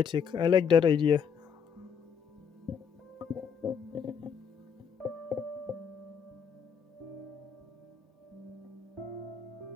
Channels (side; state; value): right; quieter; 7.0 dB